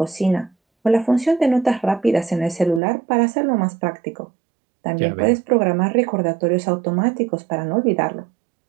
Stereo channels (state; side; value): drops out; left; at 2.8 s